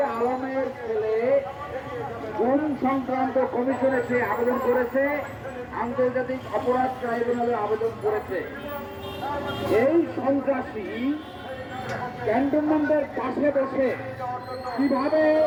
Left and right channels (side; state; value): both; identical; correlation 1.00